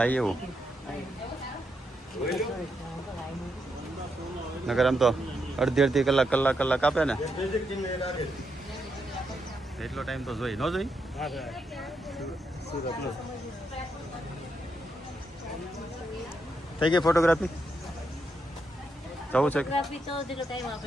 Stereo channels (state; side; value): normal; both; correlation 0.81